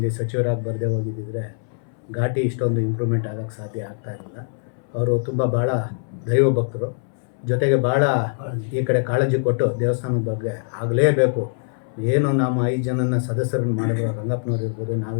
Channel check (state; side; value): silent; right; 64 dB below the other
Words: ಸಚಿವರಾಗಿ ಬರದೇ ಹೋಗಿದ್ದಿದ್ರೆ ಘಾಟಿ ಇಷ್ಟೊಂದು ಇಂಪ್ರೂವ್ಮೆಂಟ್ ಆಗೋಕ್ಕೆ ಸಾಧ್ಯ ಆಗ್ತಾಯಿರಲಿಲ್ಲ. ಅವರು ತುಂಬ ಭಾಳ ದೈವ ಭಕ್ತರು, ಜೊತೆಗೆ ಭಾಳ ಈ ಕಡೆ ಕಾಳಜಿ ಕೊಟ್ಟು ದೇವಸ್ಥಾನದ ಬಗ್ಗೆ ಆಗಲೇಬೇಕು. ಏನು ನಮ್ಮ 5 ಜನನ ಸದಸ್ಯರನ್ನು ಮಾಡಿದ್ರು, ರಂಗಪ್ಪನವ್ರು ಇರ್ಬೋದು,